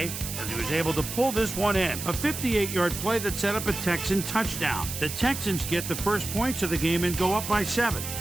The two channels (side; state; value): right; noise; hiss, 7 dB below the sound